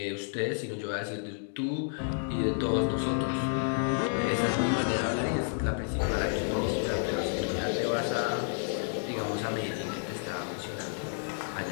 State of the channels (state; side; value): silent; right; digital silence